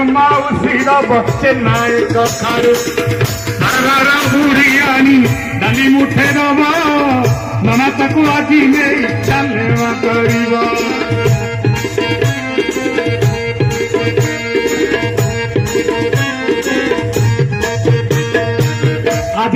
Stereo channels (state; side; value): identical; both; correlation 1.00